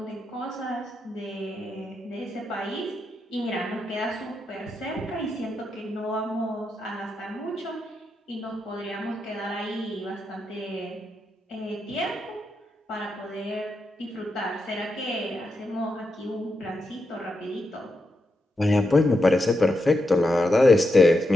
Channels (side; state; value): both; normal; correlation 0.85